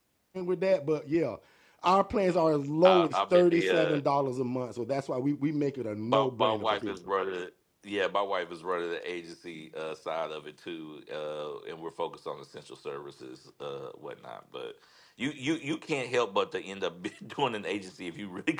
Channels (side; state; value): both; identical; correlation 1.00